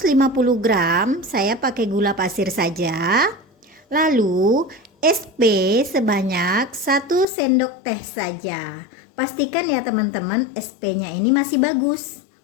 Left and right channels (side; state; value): right; drops out; at 7.2 s